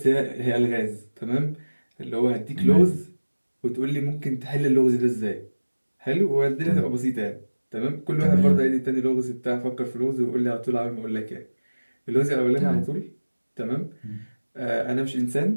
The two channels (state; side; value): inverted; both; correlation -1.00